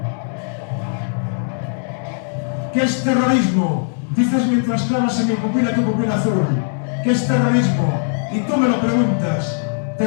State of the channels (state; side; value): silent; right; digital silence